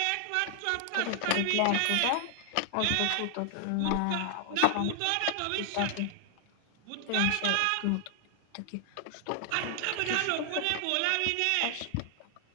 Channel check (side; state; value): both; different; correlation 0.00